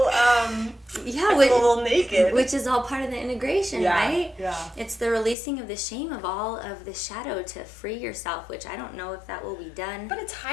naked. Which is all part of the integration, right? Yeah. It's the releasing of the shame of all of the shadow to free yourself, which I don't know if that will be done. But it's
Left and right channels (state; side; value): drops out; right; at 5.4 s